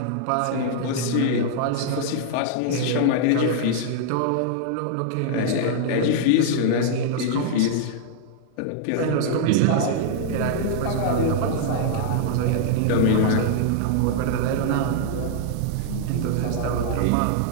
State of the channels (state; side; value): different; both; correlation -0.01